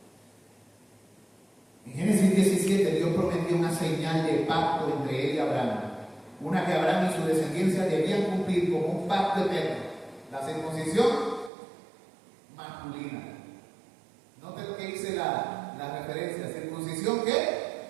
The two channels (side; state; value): left; drops out; at 11.5 s